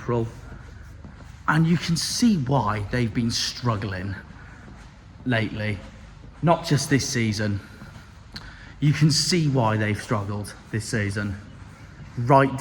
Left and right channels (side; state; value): both; identical; correlation 1.00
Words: And you can see why they've been struggling lately. Not just this season. You can see why they've struggled this season. Right